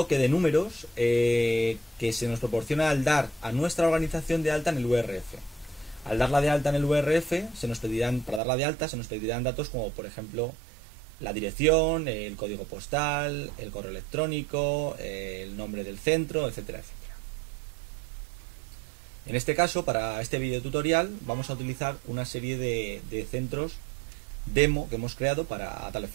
de números que se nos proporciona al dar a nuestra organización de alta en el URF. Al darla de alta en el URF, para darla de alta se nos pedirán datos como, por ejemplo, la dirección, el código postal, el correo electrónico, el nombre del centro, etcétera, etcétera. En este caso, para este video tutorial, vamos a utilizar una serie de centros demo que hemos creado a tal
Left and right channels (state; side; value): drops out; left; at 8.4 s